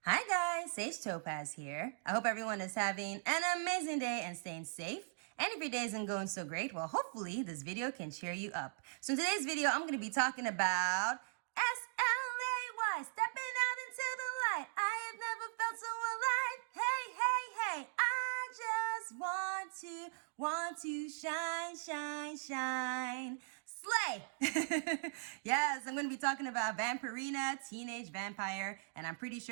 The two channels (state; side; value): silent; left; digital silence